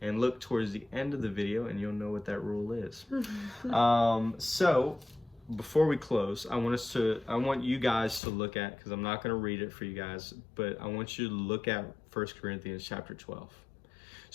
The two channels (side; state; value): right; drops out; at 8.2 s